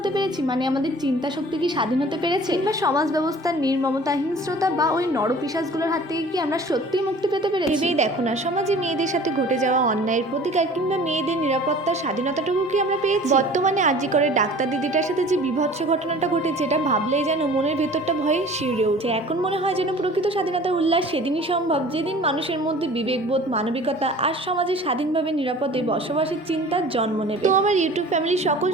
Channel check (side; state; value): both; normal; correlation 0.46